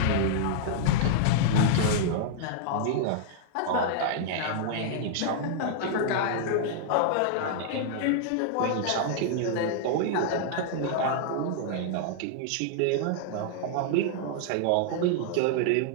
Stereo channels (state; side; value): different; both; correlation -0.01